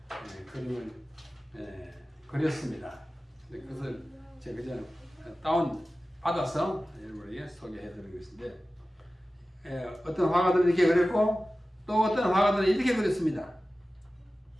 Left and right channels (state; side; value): normal; both; correlation 0.96